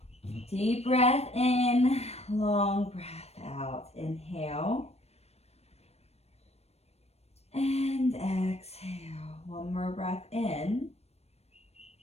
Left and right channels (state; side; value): late; right; 0.31 ms